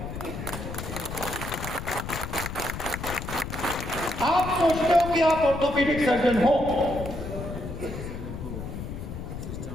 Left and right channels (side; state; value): left; noise; rumble, 7 dB below the sound